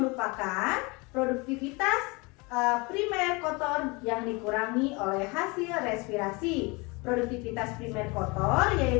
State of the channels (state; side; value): quieter; right; 27.0 dB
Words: produktivitas primer kotor yang dikurangi oleh hasil respirasi. Produktivitas primer kotor